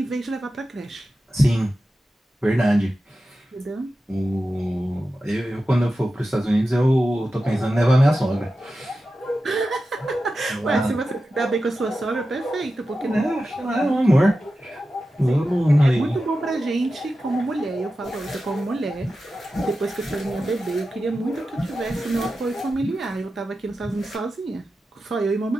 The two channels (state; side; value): normal; both; correlation 0.92